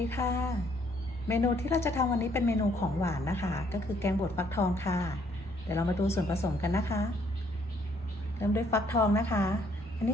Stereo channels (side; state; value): both; normal; correlation 0.66